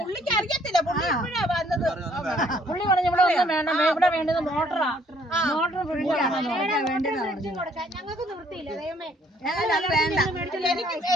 പുള്ളിക്ക് അറിയത്തില്ല, പുള്ളി ഇപ്പഴാ വന്നത്. പുള്ളി പറഞ്ഞു ഇവിടെ ഒന്നും വേണം, ഇവിടെ വേണ്ടത് മോട്ടറാ. ഞങ്ങൾക്ക് നിർത്തിയില്ല.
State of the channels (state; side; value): normal; both; correlation 0.64